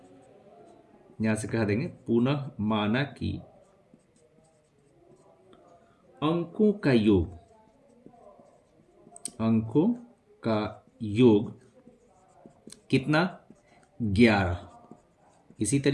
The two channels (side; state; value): both; identical; correlation 1.00